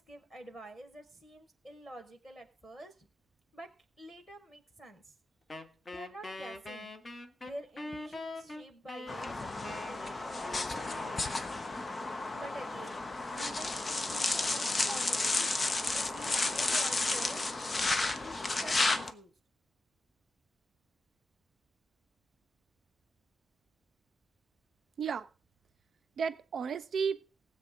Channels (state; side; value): normal; both; correlation 0.90